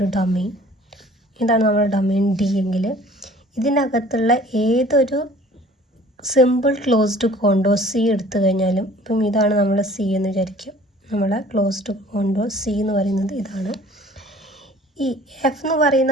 domain, ഇതാണ് നമ്മുടെ domain D എങ്കിൽ ഇതിനകത്തുള്ള ഏതൊരു സിമ്പിൾ ക്ലോസ്ഡ് കോണ്ടോർ സി എടുത്തു കഴിഞ്ഞാലും, ഇപ്പം ഇതാണ് നമ്മൾ സി എന്ന് വിചാരിക്കും. നമ്മളെ ക്ലോസ്ഡ് കോണ്ടോർ സി എന്ന് പറയുന്നത് ഇതാണ്. ഈ എഫ് എന്ന്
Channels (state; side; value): normal; both; correlation 0.50